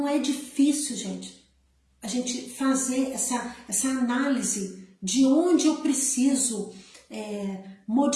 é difícil, gente, a gente fazer essa análise de onde eu preciso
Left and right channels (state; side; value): identical; both; correlation 1.00